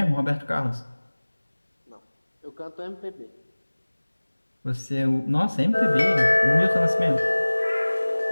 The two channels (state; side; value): inverted; both; correlation -1.00